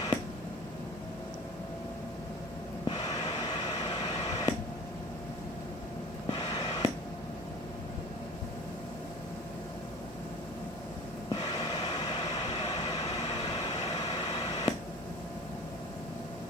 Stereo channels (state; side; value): normal; both; correlation 0.41